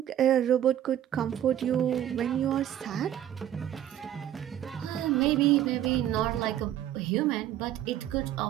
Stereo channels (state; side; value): quieter; left; 11.5 dB